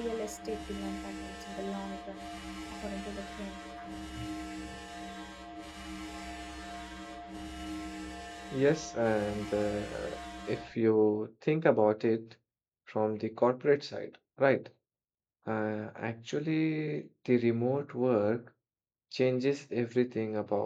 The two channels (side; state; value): both; identical; correlation 1.00